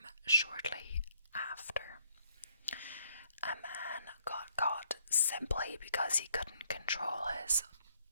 shortly after. A man got caught simply because he couldn't control his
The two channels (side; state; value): both; inverted; correlation -0.69